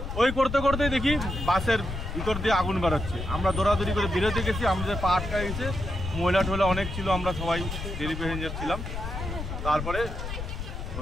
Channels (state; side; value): noise; left; rumble, 6 dB below the sound